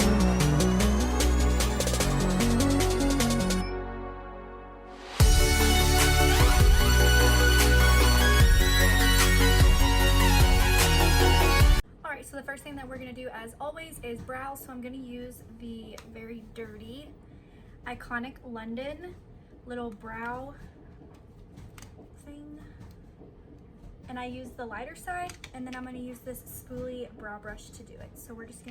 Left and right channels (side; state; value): both; identical; correlation 1.00